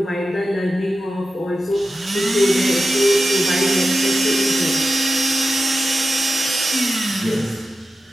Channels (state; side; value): normal; both; correlation 0.92